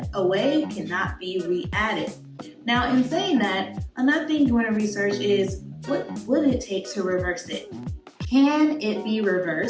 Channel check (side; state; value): both; identical; correlation 1.00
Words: away, cannot be re-added. Now, in saying that, another thing you want to research is what would it take to reverse it? Can it be